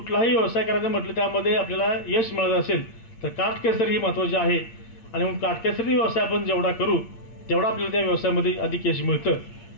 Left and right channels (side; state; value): right; late; 8.6 ms